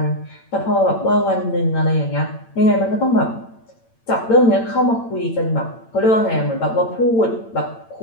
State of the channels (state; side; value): late; right; 8.9 ms